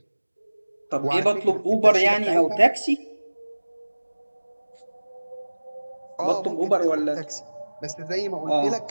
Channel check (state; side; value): inverted; both; correlation -1.00